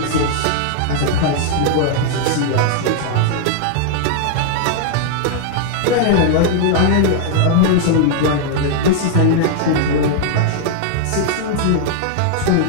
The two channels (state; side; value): different; both; correlation -0.01